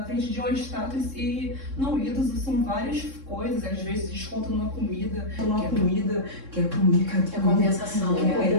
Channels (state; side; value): late; left; 3.6 ms